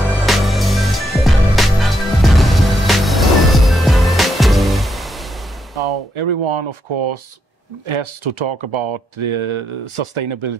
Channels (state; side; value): normal; both; correlation 0.79